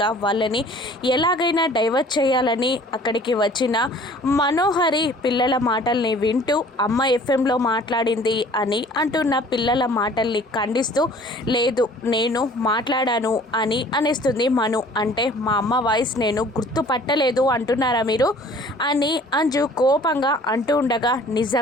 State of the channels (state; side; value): normal; both; correlation 0.51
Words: వాళ్ళని ఎలాగైనా డైవర్ట్ చేయాలని అక్కడికి వచ్చిన మనోహరి పిల్లల మాటల్ని వింటూ అమ్మ ఎఫ్ఎంలో మాట్లాడింది అని అంటున్న పిల్లల మాటల్ని ఖండిస్తూ లేదు నేను మాట్లాడాను అని అనేస్తుంది మను. అంటే మా అమ్మ వాయిస్ నేను గుర్తుపట్టలేదు అంటున్నారా మీరు అని అంజు కోపంగా అంటూ ఉండగా